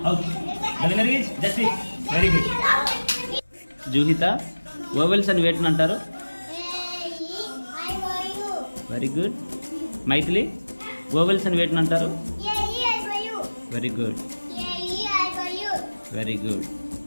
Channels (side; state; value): both; inverted; correlation -1.00